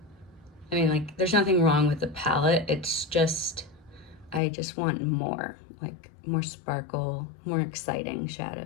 I mean, like, there's nothing wrong with the palette, it's just, I just want more, like more sparkle, more exciting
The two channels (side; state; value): right; drops out; at 4.4 s